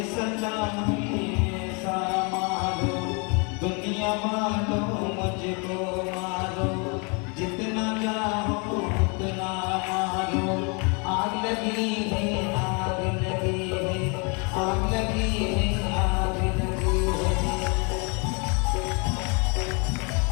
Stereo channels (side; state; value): right; quieter; 33.1 dB